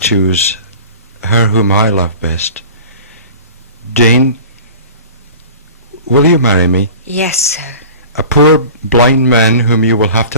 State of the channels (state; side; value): inverted; both; correlation -0.40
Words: choose her whom I love best. Jane, will you marry me? Yes, sir. A poor blind man whom you will have